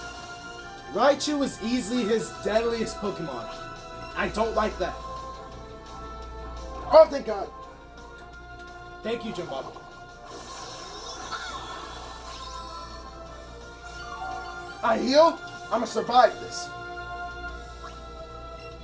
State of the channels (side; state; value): both; identical; correlation 1.00